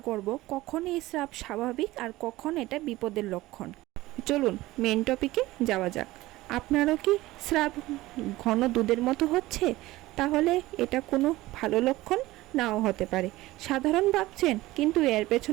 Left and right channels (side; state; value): left; quieter; 18.1 dB